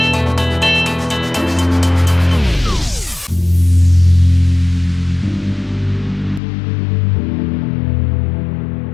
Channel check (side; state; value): right; drops out; at 6.4 s